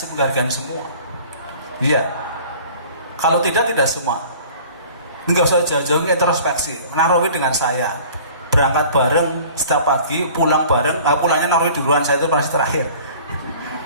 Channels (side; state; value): both; inverted; correlation -0.47